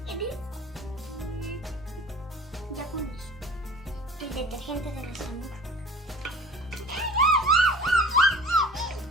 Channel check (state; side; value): normal; both; correlation 0.44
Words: Ya con eso. El detergente de nuestra mujer.